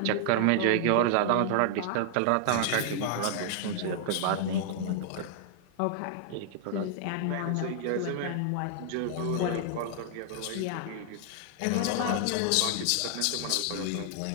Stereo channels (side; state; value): both; different; correlation -0.01